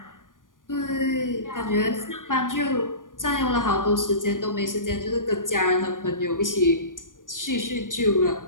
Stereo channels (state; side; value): late; right; 0.89 ms